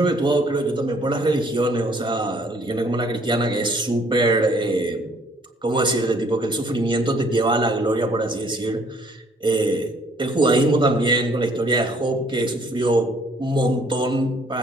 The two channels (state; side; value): normal; both; correlation 0.61